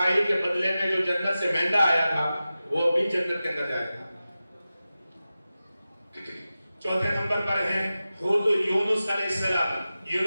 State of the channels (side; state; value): both; inverted; correlation -0.94